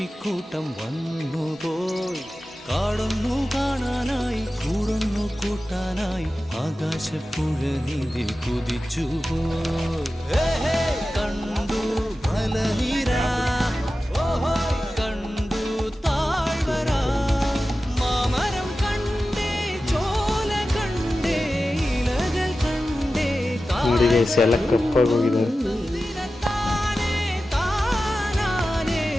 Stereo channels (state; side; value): normal; both; correlation 0.94